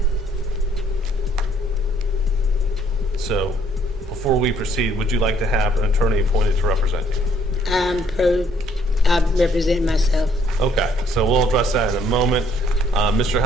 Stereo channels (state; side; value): normal; both; correlation 0.65